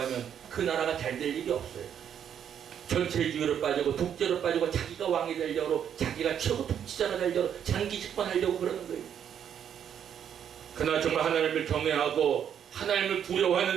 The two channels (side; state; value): left; quieter; 8.8 dB